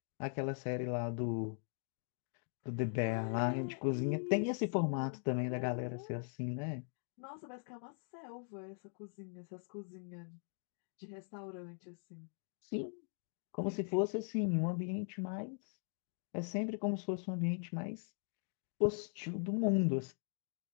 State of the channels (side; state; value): right; silent; 51 dB below the other